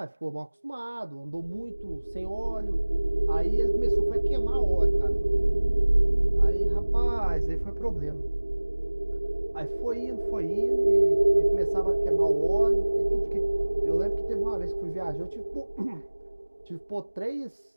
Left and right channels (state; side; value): inverted; both; correlation -1.00